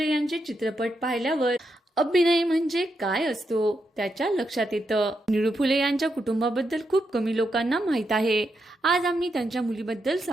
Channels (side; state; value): both; normal; correlation 0.83